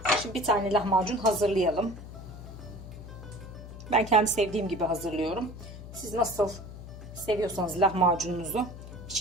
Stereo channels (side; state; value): left; noise; hum, 13 dB below the sound